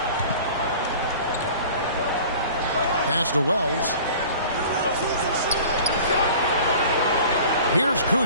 Pass to Wells. Here's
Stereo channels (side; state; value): both; inverted; correlation -0.44